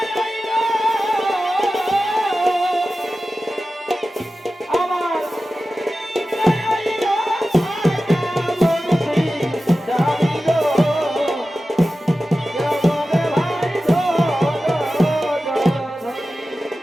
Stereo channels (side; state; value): both; normal; correlation 0.94